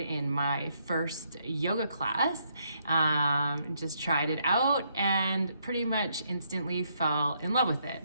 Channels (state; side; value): inverted; both; correlation -0.73